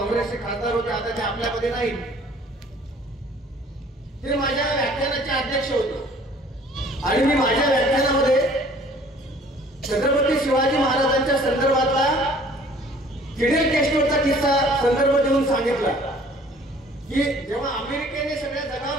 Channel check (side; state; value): both; normal; correlation 0.54